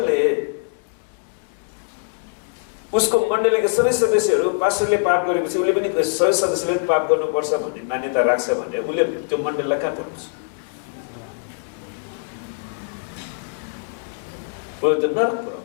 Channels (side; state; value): right; silent; 64 dB below the other